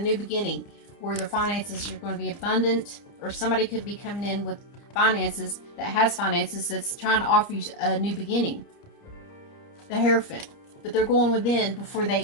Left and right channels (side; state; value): right; late; 30 ms